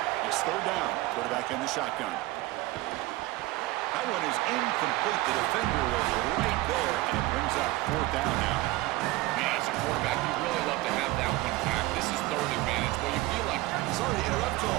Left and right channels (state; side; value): quieter; left; 19.1 dB